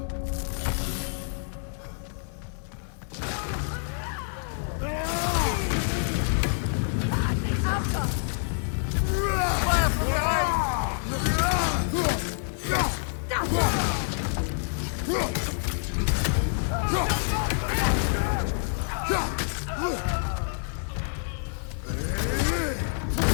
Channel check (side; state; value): right; silent; digital silence